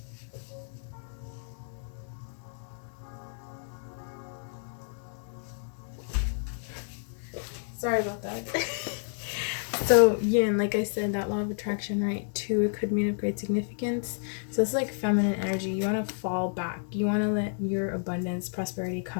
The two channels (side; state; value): right; silent; 58 dB below the other